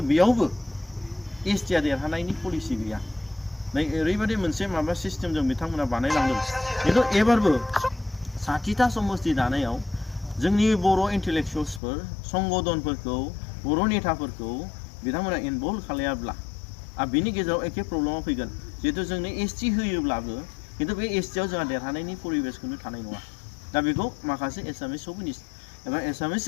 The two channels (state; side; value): drops out; right; at 11.8 s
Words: बेयावबो एसटिया देरहानायनि पलिसि गैया नै ओरैबायदि मोनसे माबा सिस्टेमजों बिथांमोना बानायलांदों खिन्थु एबारबो 60था समस्ति दानायाव जोंनि बर' इन्टेलेक्सुवेल्सफोर संगठनफोरखौ बर' नेताफोरखौ बिथांमोना इनभल्भ खालायाब्ला बिनि गेजेराव एखे प्रब्लेमा फैगोन जिहेतु जोंनो एसटि होयोब्लाबो खिन्थु बे एसटियाव जोंहा देरहानायनि परिबेसखौनो थानाय नङा दा बेखौ माखासे एसामिस सभिनिस्ट एबा एसामिस